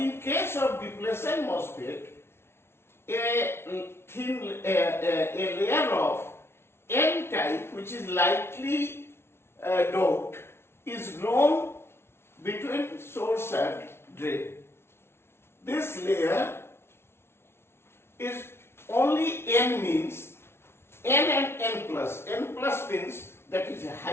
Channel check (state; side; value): late; right; 0.12 ms